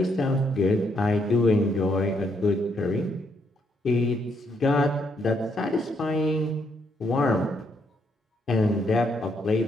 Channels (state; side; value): normal; both; correlation 0.75